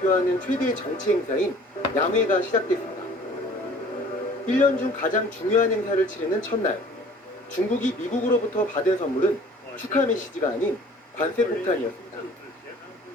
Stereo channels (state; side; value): normal; both; correlation 0.50